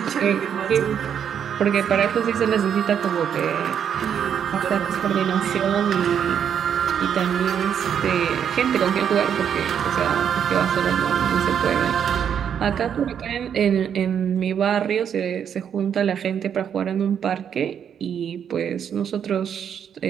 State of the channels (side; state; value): left; quieter; 8.3 dB